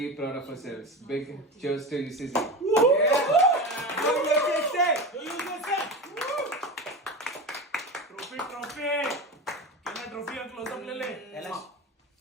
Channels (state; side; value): normal; both; correlation 0.25